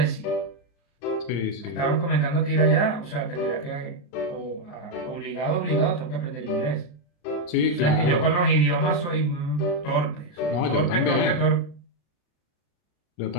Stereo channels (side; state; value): right; late; 34 ms